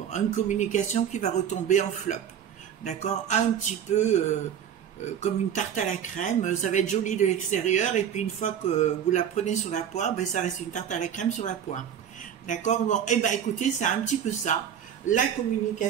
une communication qui va retomber en flop. D'accord? Un petit peu... comme une tarte à la crème, ça va être joli de l'extérieur et puis une fois que vous la prenez sur la poire, ben ça reste une tarte à la crème sur la poire. D'accord? Bon, et ben écoutez, c'est un petit peu ça. La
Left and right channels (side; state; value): left; quieter; 9.0 dB